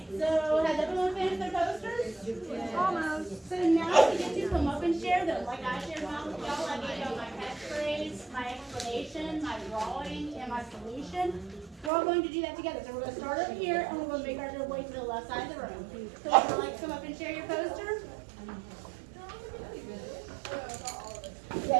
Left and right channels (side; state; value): left; drops out; at 11.9 s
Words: So has everyone finished their posters? Almost. So now we get to come up and share them. Like I shared mine with y'all. I gave y'all my catchphrase, my explanation, my drawing, and my solution. We're all going to do that together. So we're going to start over here, and we're going to make our way to the left side of the room. So would you like to come up and share your poster? Yeah,